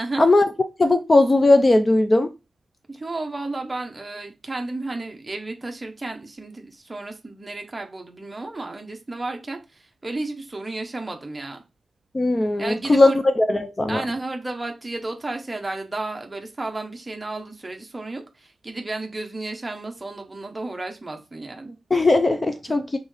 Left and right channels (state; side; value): normal; both; correlation 0.95